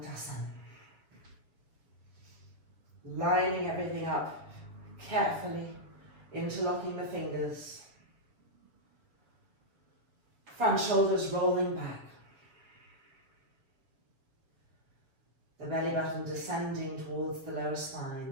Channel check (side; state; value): left; late; 6.9 ms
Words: Lining everything up carefully, interlocking the fingers. Front shoulders rolling back. The belly button descending towards the lower spine,